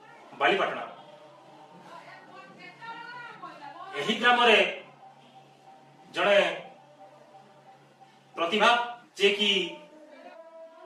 बालीपाटना। यही ग्राम रे जड़े प्रतिभा जे कि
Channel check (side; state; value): both; identical; correlation 1.00